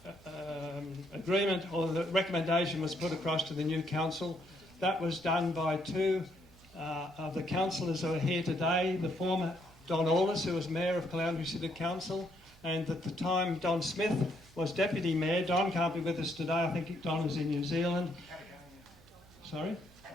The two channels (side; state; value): right; noise; hum, 25 dB below the sound